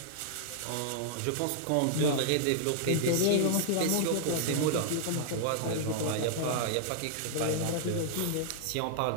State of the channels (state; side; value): different; both; correlation -0.01